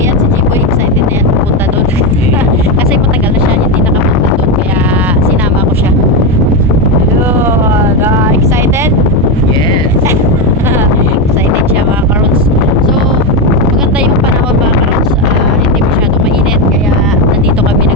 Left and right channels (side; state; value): both; normal; correlation 0.10